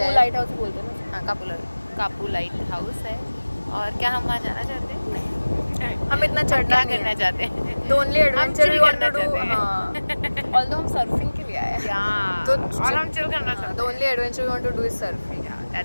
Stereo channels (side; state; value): both; inverted; correlation -1.00